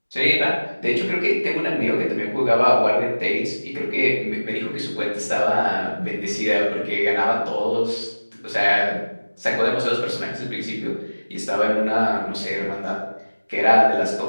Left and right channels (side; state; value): both; inverted; correlation -1.00